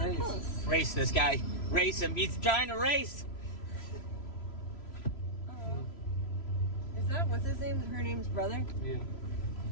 close. Race this guy. Race him. He's trying to race. Oh. Is that what's his name? Her name's brother. Yeah.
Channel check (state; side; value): late; right; 3.0 ms